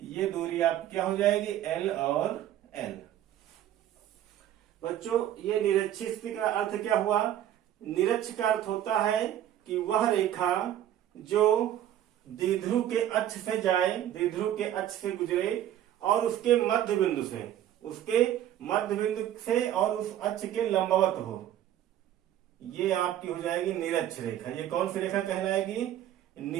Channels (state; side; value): quieter; left; 11.7 dB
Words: ये दूरी आप क्या हो जाएगी L और L। बच्चों, ये निरक्षीय स्थिति का अर्थ क्या हुआ? निरक्ष का अर्थ होता है कि वह रेखा जो द्विध्रुव के अक्ष से जाए, द्विध्रुव के अक्ष से गुजरे और उसके मध्य बिंदु से और उस अक्ष के लंबवत हो, ये आपकी हो जाएगी निरक्ष रेखा। ये कौन सी रेखा कहलाएगी?